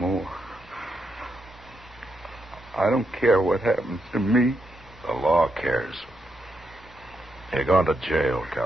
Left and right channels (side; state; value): both; normal; correlation 0.82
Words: I don't care what happens to me. The law cares. You're going to jail,